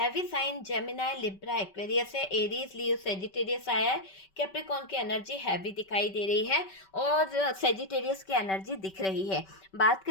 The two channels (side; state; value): right; late; 5.2 ms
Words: sign Gemini, Libra, Aquarius है, एरीज, लियो, सेजिटेरियस आया है। कैप्रिकॉर्न की एनर्जी हैवी दिखाई दे रही है और सेजिटेरियस की एनर्जी दिख रही है। बात